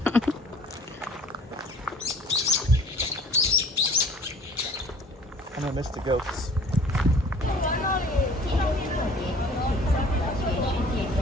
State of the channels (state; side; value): normal; both; correlation 0.51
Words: And I missed the goats.